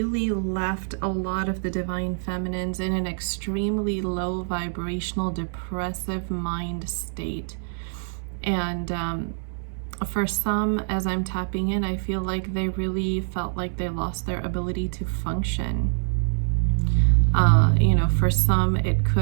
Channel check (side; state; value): left; silent; 62 dB below the other